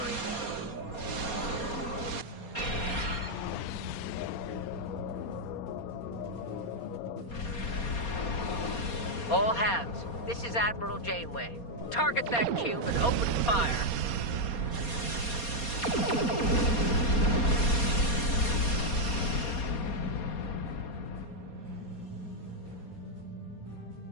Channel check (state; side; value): late; right; 4.2 ms